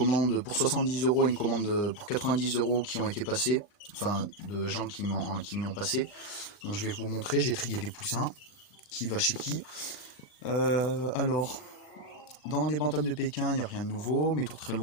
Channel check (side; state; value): right; late; 39 ms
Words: pour 70 € et une commande pour 90 € qui ont été passées. Enfin, de gens qui m'y ont passé. Donc je vais vous montrer, j'ai trié des poussins, qui va chez qui. Alors, dans les bantams de Pékin, il n'y a rien de nouveau, mes tourterelles